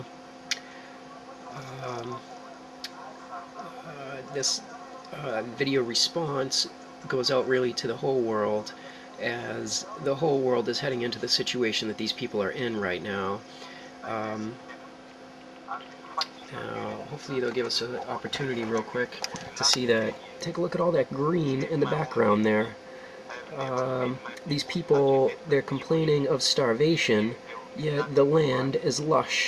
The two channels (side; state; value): both; identical; correlation 1.00